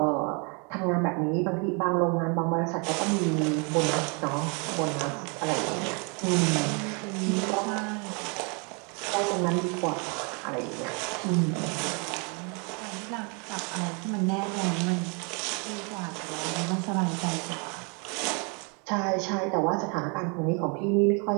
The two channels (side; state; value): left; quieter; 34.3 dB